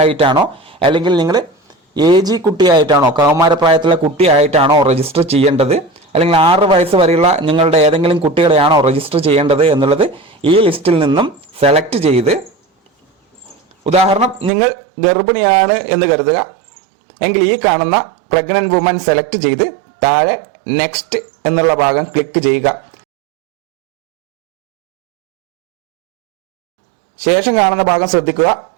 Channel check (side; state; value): left; drops out; at 14.5 s